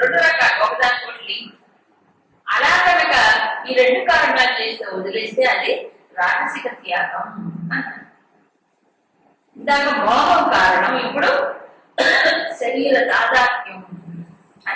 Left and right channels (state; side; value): identical; both; correlation 1.00